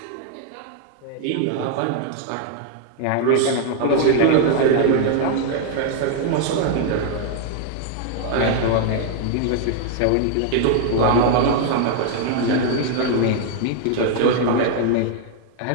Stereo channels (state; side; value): different; both; correlation 0.00